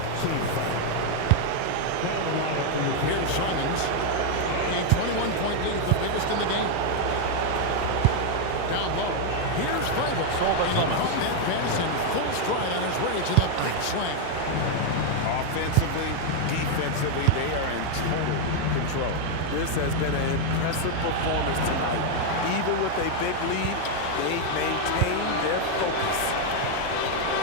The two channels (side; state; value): both; different; correlation 0.01